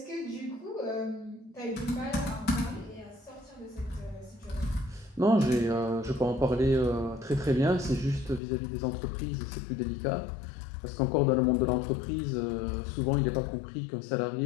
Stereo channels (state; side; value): drops out; right; at 8.4 s